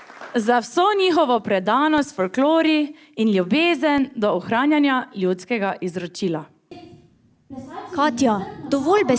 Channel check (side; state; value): both; identical; correlation 1.00